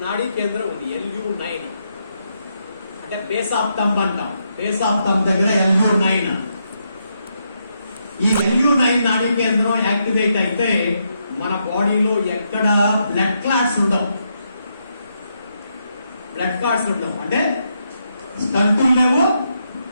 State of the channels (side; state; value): both; inverted; correlation -0.80